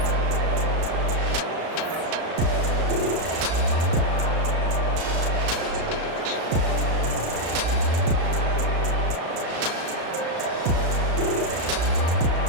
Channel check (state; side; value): late; left; 36 ms